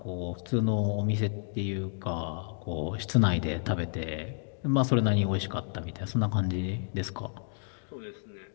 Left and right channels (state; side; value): silent; right; 57 dB below the other